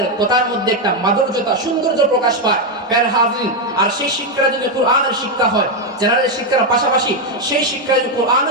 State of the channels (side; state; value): both; normal; correlation 0.04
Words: কথার মধ্যে একটা মাধুর্যতা, সৌন্দর্য প্রকাশ পায়। প্রিয় হাজিরিন, আর সেই শিক্ষা যদি কোরআনের শিক্ষা হয়, জেনারেল শিক্ষার পাশাপাশি সেই শিক্ষা যদি